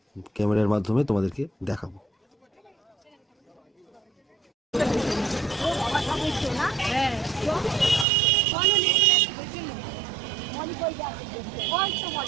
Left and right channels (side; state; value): left; drops out; at 8.1 s